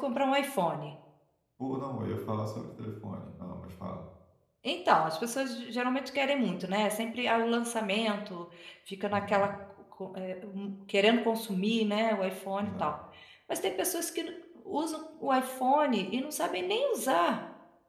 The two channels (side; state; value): both; identical; correlation 1.00